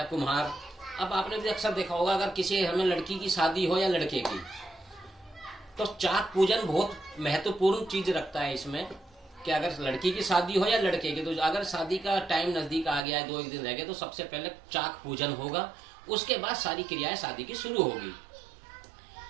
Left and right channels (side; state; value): left; drops out; at 13.0 s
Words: कुम्हार। अब आपने भी अक्सर देखा होगा, अगर किसी घर में लड़की की शादी हो या लड़के की, तो चाक पूजन बहुत महत्वपूर्ण चीज रखता है इसमें, कि अगर लड़की की शादी हो या लड़के की, तो अगर शादी का टाइम नजदीक आ गया है, 2-1 दिन रह गए, तो सबसे पहले चाक पूजन होगा, उसके बाद सारी क्रियाएं शादी की शुरू होगी।